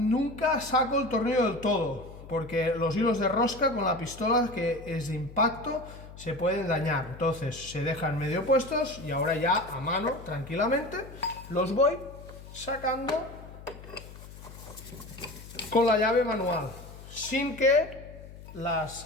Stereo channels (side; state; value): left; noise; hum, 16 dB below the sound